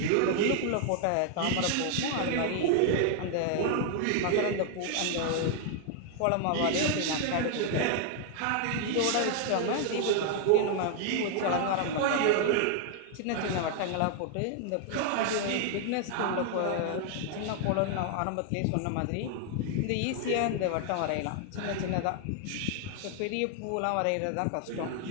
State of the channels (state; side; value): different; both; correlation 0.00